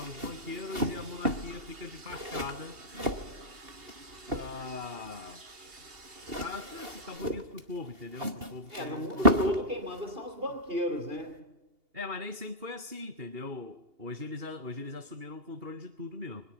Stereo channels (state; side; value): late; left; 2.8 ms